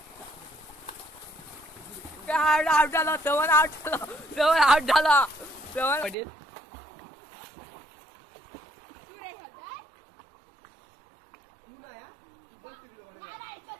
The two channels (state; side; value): drops out; left; at 6.2 s